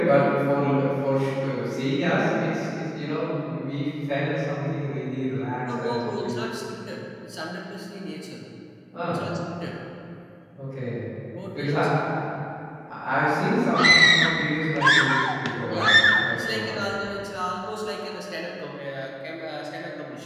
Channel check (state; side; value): identical; both; correlation 1.00